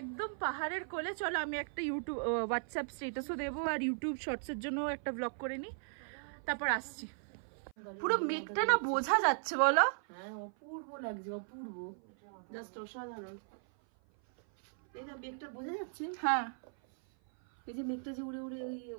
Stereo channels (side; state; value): left; silent; 53 dB below the other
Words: পাহাড়ের কোলে। চলো আমি একটা ইউটিউব হোয়াটসঅ্যাপ স্ট্যাটাসও দেবো, আর ইউটিউব শর্টসের জন্য একটা ব্লগ করে নিই, তারপর আসছি। পুরো মেঘটা না বোঝা যাচ্ছে, বলো? হ্যাঁ, অপূর্ব লাগছে, অপূর্ব, জাস্ট অসাধারণ। এই না মেঘটা বোঝা যাচ্ছে, হ্যাঁ, এই যে মেঘটা যে উড়ে উড়ে ওই